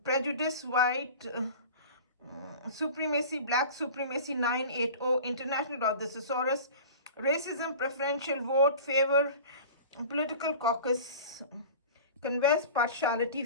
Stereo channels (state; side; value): inverted; both; correlation -0.38